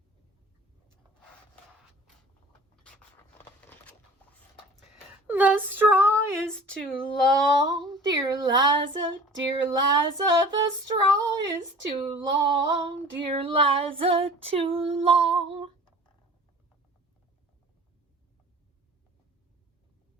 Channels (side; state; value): both; normal; correlation 0.45